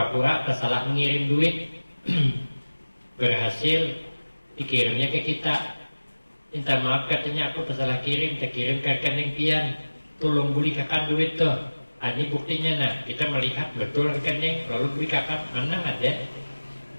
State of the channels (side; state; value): both; inverted; correlation -1.00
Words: tersalah mengirim duit, berhasil dikirimnya ke kita. Minta maaf katanya aku tersalah kirim, terkirim ke rekening pian, tolong beli kakak duit tuh. Ini buktinya. Nah kita melihat betul rekening, lalu beli kakak mana ada